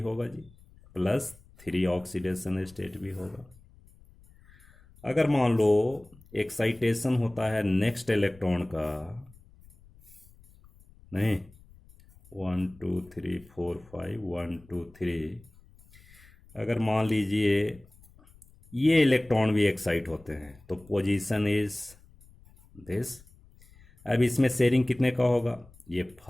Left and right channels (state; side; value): noise; left; rumble, 25 dB below the sound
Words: जी, +3 ऑक्सीडेशन स्टेट भी होगा। अगर मान लो एक्साइटेशन होता है नेक्स्ट इलेक्ट्रॉन का, नहीं 1 2 3 4 5 1 2 3, अगर मान लीजिए ये इलेक्ट्रॉन भी एक्साइट होते हैं तो पोजीशन इज दिस। अब इसमें शेयरिंग कितने का होगा, ये